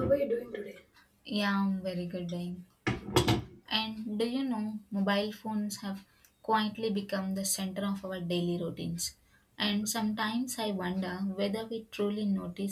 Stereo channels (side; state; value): both; identical; correlation 1.00